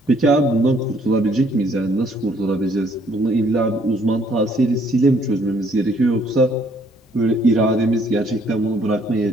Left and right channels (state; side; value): normal; both; correlation 0.65